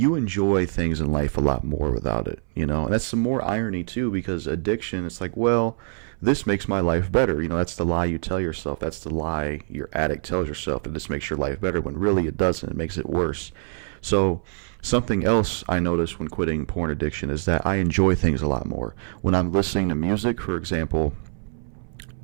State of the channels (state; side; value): silent; left; 61 dB below the other